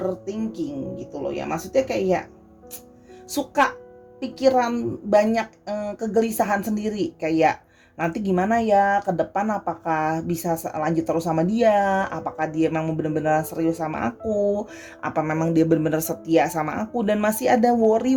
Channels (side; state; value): both; identical; correlation 1.00